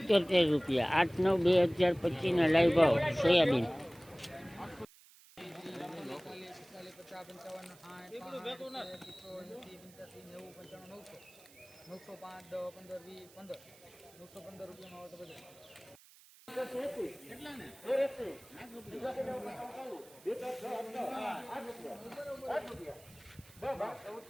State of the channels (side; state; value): right; noise; hiss, 24 dB below the sound